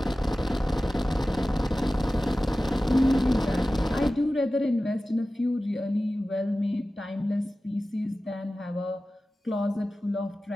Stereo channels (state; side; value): normal; both; correlation 0.96